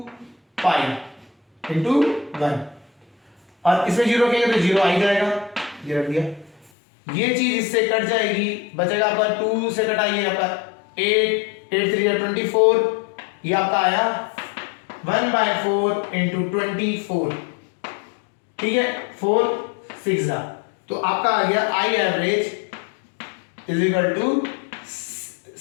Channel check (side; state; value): right; drops out; at 6.7 s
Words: पाई इंटू 1, और इसमें 0 रखेंगे तो 0 आ ही जाएगा, ये रख दिया, ये चीज इससे कट जाएगी, बचेगा आपका 2 से कटाइए आपका 8, 8 3 24, ये आपका आया 1/4 इंटू 24, ठीक है, 4 6 तो आपका आ गया I average is equal to